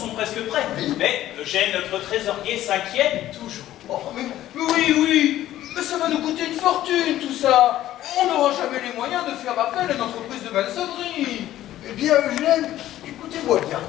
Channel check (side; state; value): right; quieter; 13.6 dB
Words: presque prêts. Mais Eugène, notre trésorier, s'inquiète toujours. Oh, mais oui, mais ça va nous coûter une fortune tout ça. On n'aura jamais les moyens de faire appel à une entreprise de maçonnerie. Eh bien, Eugène, écoutez-moi bien.